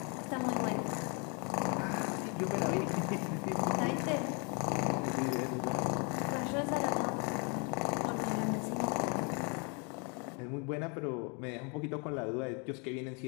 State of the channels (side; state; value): right; quieter; 35.1 dB